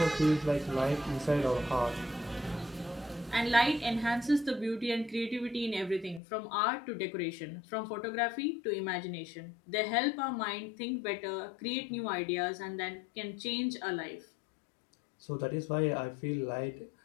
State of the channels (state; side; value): drops out; right; at 6.2 s